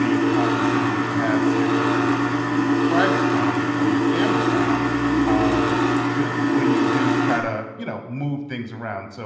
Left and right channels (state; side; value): identical; both; correlation 1.00